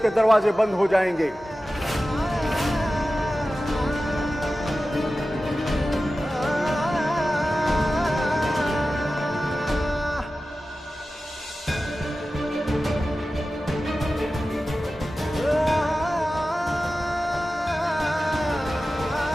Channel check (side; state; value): both; normal; correlation 0.95